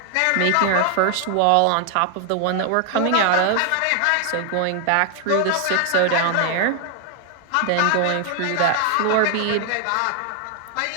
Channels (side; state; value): both; different; correlation 0.00